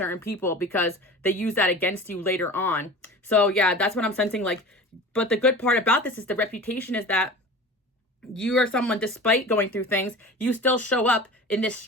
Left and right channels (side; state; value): both; normal; correlation 0.36